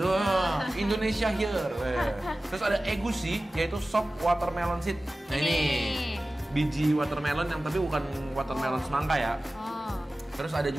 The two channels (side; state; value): both; normal; correlation 0.96